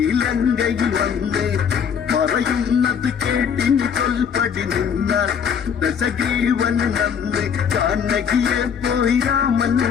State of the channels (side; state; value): right; quieter; 7.4 dB